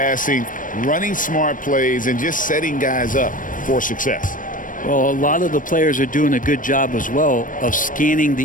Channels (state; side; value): late; right; 0.38 ms